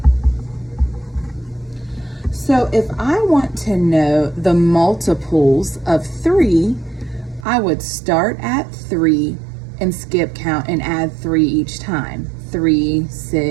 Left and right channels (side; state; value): left; drops out; at 7.5 s